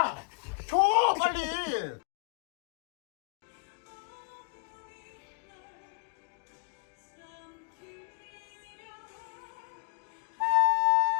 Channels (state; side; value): quieter; right; 36.0 dB